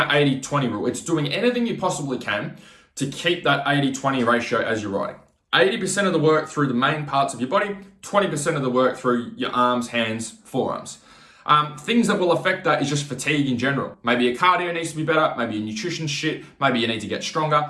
80-20 rule. It's doing anything you possibly can to keep that 80-20 ratio as you're riding. 80% of the work through the main parts of your body, 20% of the work through your arms, hands, forearms. Things that will affect that is just fatigue in general. Maybe your cardio needs to be better, maybe your nutrition shit, maybe you need to get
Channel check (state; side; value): identical; both; correlation 1.00